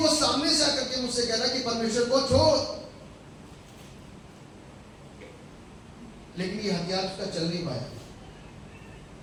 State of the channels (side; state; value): both; identical; correlation 1.00